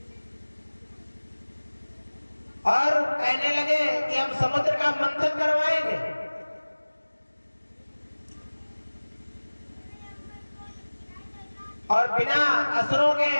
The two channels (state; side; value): inverted; both; correlation -1.00